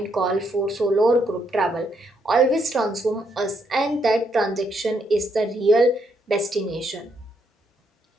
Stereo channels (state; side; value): normal; both; correlation 0.75